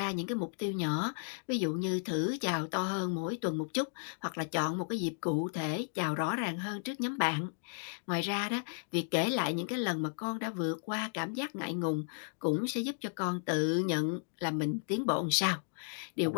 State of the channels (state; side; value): silent; right; digital silence